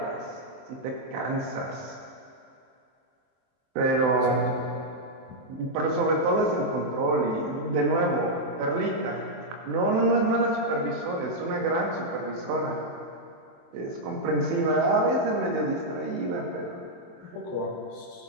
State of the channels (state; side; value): late; left; 24 ms